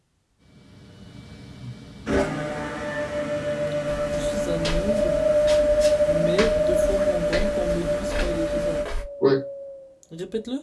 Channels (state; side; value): identical; both; correlation 1.00